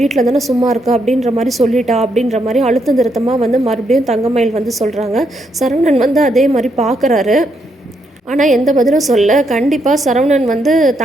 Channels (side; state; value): both; normal; correlation 0.77